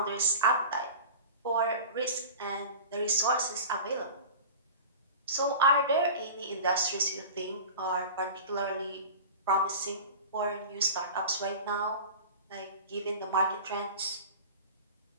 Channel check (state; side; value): inverted; both; correlation -0.35